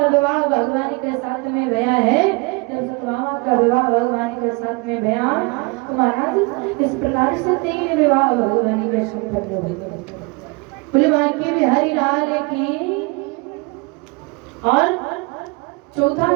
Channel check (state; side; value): quieter; left; 28.1 dB